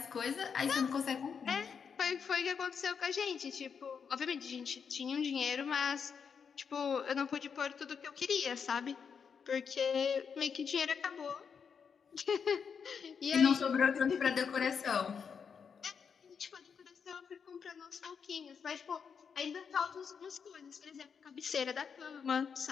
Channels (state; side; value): quieter; right; 6.5 dB